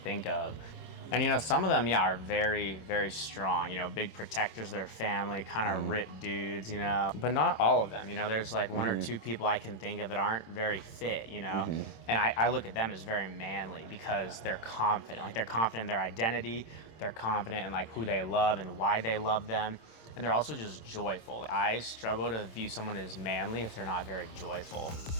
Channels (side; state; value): right; late; 26 ms